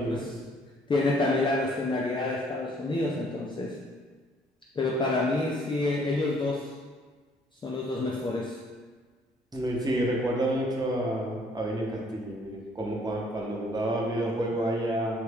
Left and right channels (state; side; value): normal; both; correlation 0.62